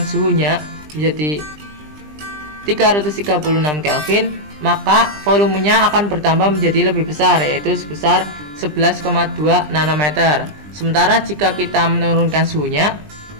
menjadi 336 Kelvin, maka volumenya akan bertambah menjadi lebih besar, yaitu sebesar 11,2 nanometer. Sementara jika kita menurunkan suhunya,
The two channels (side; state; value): left; late; 20 ms